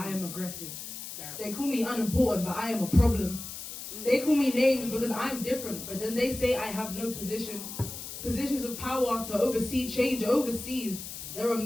am aggressive. They call me unimportant, but I am a problem. They call me names because I'm different, but then they say I have no position. Positions of power to oversee change overseas. There are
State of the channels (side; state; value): left; noise; hiss, 9 dB below the sound